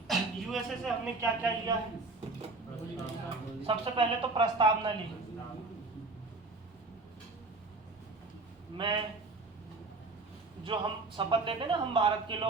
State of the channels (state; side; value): quieter; left; 3.5 dB